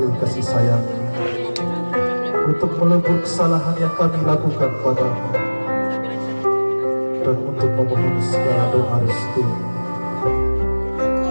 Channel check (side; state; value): both; inverted; correlation -1.00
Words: kasih sayang, untuk melebur kesalahan yang kami lakukan padamu, dan untuk memohon segala doa restu.